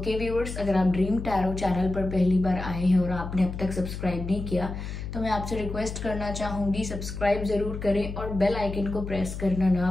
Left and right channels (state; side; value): noise; left; hum, 7 dB below the sound